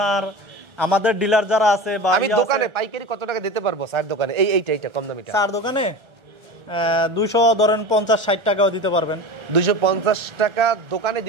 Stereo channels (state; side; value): late; left; 1.3 ms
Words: আমাদের ডিলার যারা আছে বা আমি দোকানে পাইকারি কত টাকা দিতে পারবো চার দোকানে? এইটা কম দামিটা চার দোকানে 200 ধরেন 50-60 টাকাও দিতে পারবেন। 250 টাকা দোকানে